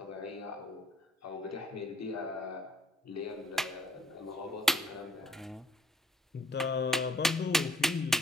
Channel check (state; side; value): normal; both; correlation 0.62